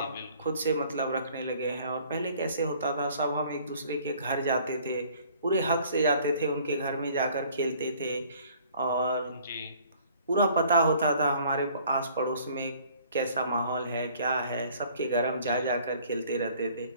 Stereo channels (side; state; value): both; inverted; correlation -0.55